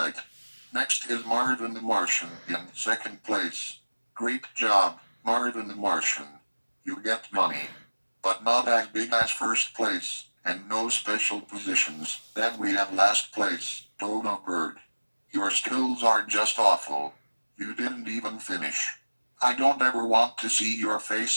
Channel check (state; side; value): inverted; both; correlation -1.00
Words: Next is Marvin the Martian in second place. Great job, Marvin the Martian. You get money, but not as big as first place, and no special positions. Then we have last place, Dodo Bird. Your skills are just awful. You didn't even finish. I don't ever want to see your